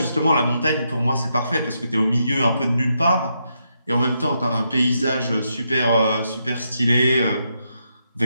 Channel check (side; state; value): both; inverted; correlation -0.81